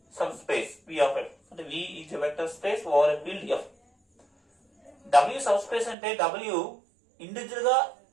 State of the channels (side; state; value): left; drops out; at 6.0 s